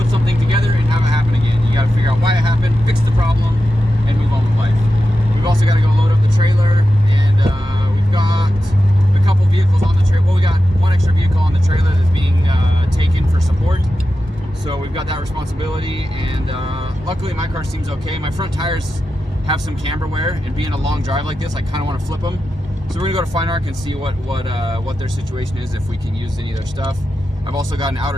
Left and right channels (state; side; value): normal; both; correlation 0.91